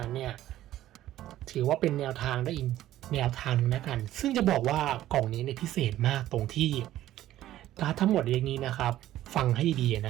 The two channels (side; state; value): left; quieter; 13.7 dB